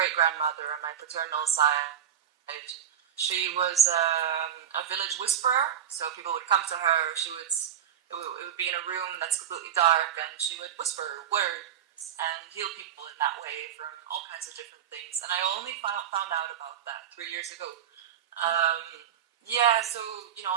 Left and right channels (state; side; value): quieter; left; 9.5 dB